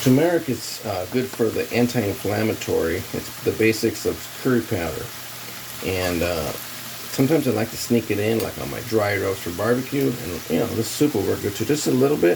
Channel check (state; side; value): identical; both; correlation 1.00